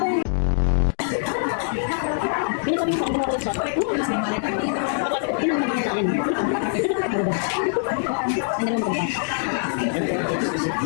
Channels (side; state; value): right; silent; digital silence